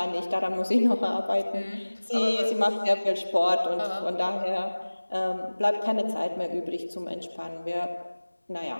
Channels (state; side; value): inverted; both; correlation -1.00